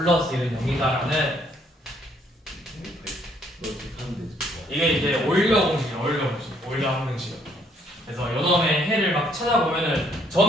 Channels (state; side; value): normal; both; correlation 0.67